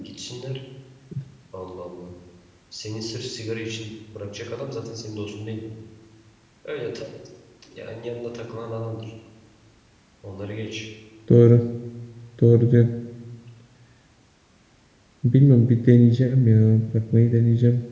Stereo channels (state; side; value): identical; both; correlation 1.00